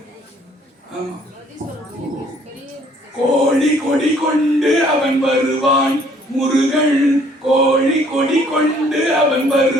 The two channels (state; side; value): normal; both; correlation 0.61